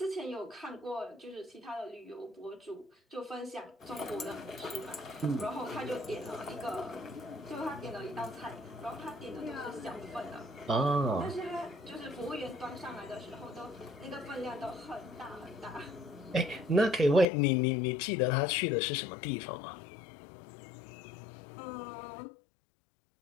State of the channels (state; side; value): drops out; right; at 17.2 s